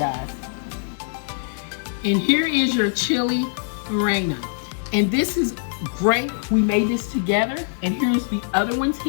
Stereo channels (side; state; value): right; silent; 59 dB below the other